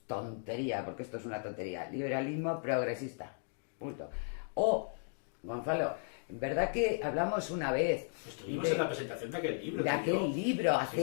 tontería, porque esto es una tontería, liberalismo progresista, punto. Gonzalo, ¿verdad que hablamos una vez? Estuvimos en la presentación de aquel libro. De aquel libro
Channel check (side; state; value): right; silent; digital silence